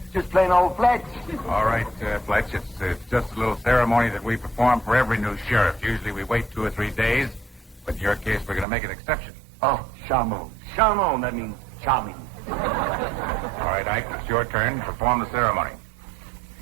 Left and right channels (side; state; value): left; drops out; at 8.7 s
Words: Just plain old Fletch. All right, Fletch, it's just a little ceremony that we perform for every new sheriff. Usually we wait 2 or 3 days, but in your case, we're going to make an exception. Oh, charmant. Charmant, that means charming. All right, Ike, it's your turn to perform the ceremony.